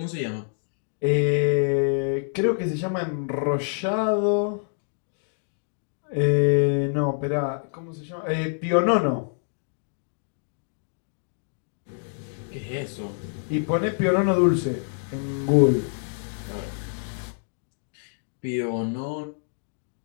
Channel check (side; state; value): right; silent; digital silence